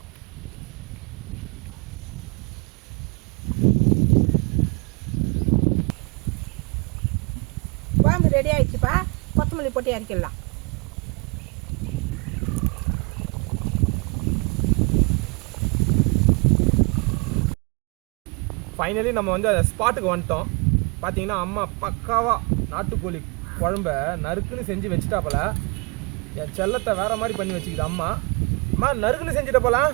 குழம்பு ரெடி ஆகிடுச்சுப்பா. கொத்தமல்லி போட்டு இறக்கிடலாம். ஃபைனலி நம்ம வந்து அந்த ஸ்பாட்டுக்கு வந்துட்டோம். பார்த்தீங்கன்னா அம்மா பக்காவாக நாட்டுக்கோழி குழம்ப நறுக்குன்னு செஞ்சு வச்சுட்டாப்பல. என் செல்லத்தை வேற மாதிரி பண்ணி வச்சுக்கிது அம்மா. அம்மா நறுக்குன்னு செஞ்சுட்ட போலாம்.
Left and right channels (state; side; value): quieter; left; 31.3 dB